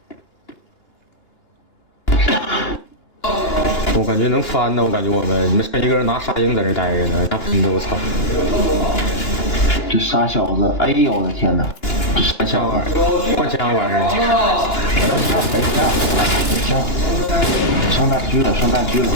我感觉能翻呢，我感觉你们剩一个人拿沙鹰在这待着呢，那喷的我操！这傻小子，哎呦我的天哪！换枪玩意儿，换枪玩意儿。上大狙了，上大狙了，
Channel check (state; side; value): late; right; 2.9 ms